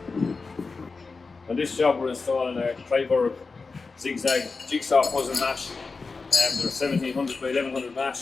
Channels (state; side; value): quieter; right; 4.3 dB